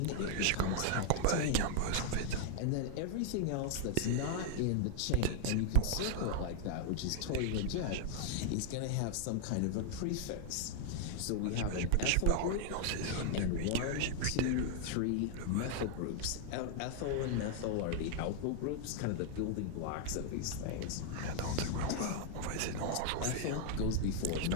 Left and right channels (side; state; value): both; different; correlation 0.00